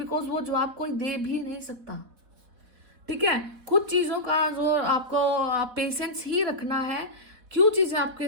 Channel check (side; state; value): left; late; 4.1 ms